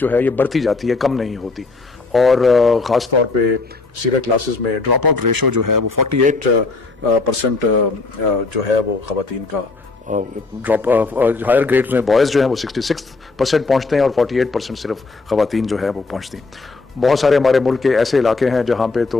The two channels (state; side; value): quieter; right; 3.8 dB